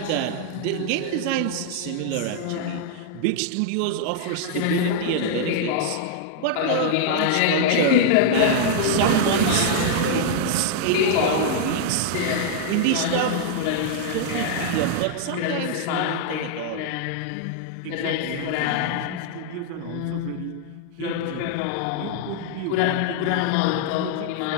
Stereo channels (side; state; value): both; different; correlation -0.01